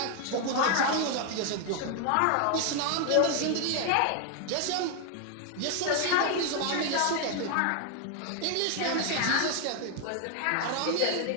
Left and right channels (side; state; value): both; different; correlation 0.00